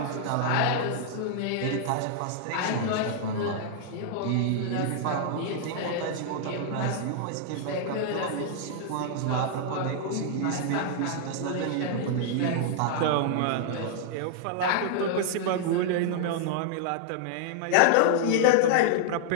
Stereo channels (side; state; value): both; different; correlation -0.01